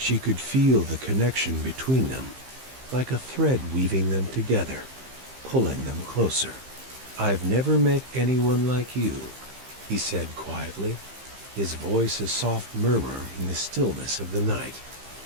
could feel the connection between them, like a thread weaving them together, pulling them closer. "I've never met anyone like you," he said quietly, his voice a soft murmur in the stillness of the night.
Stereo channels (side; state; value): left; late; 15 ms